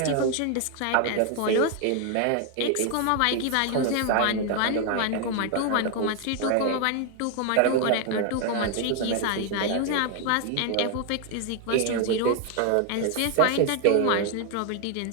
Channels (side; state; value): both; different; correlation 0.00